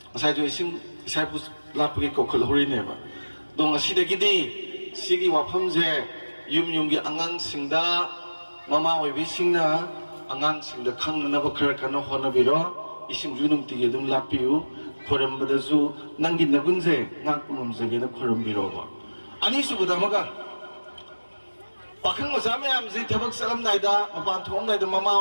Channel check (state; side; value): inverted; both; correlation -1.00